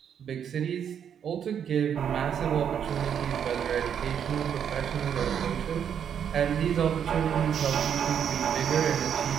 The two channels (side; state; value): left; quieter; 8.3 dB